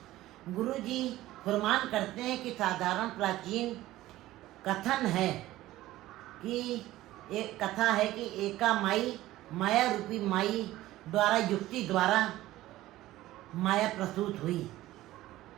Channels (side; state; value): left; quieter; 15.9 dB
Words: गुरु जी फरमान करते हैं कि साधारण प्राचीन कथन है कि एक कथा है कि एका माई, माया रूपी माई द्वारा, युक्ति द्वारा माया प्रसूत हुई।